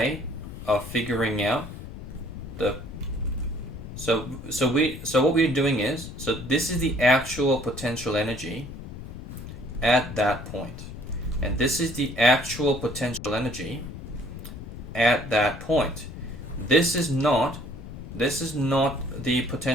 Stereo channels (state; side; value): noise; left; rumble, 11 dB below the sound